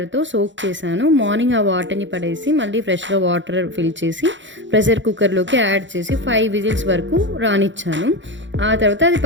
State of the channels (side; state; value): left; late; 0.54 ms